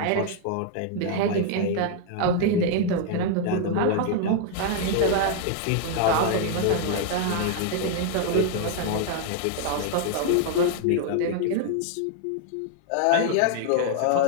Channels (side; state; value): both; different; correlation 0.00